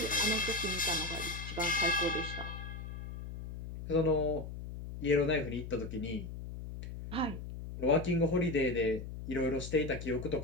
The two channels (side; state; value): left; noise; hum, 8 dB below the sound